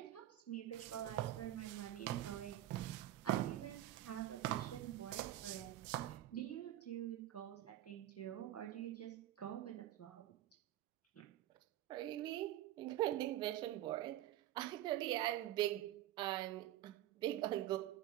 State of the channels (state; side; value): quieter; left; 13.5 dB